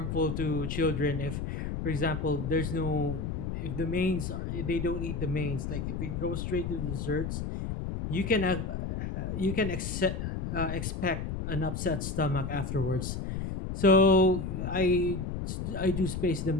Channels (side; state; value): left; noise; rumble, 4 dB below the sound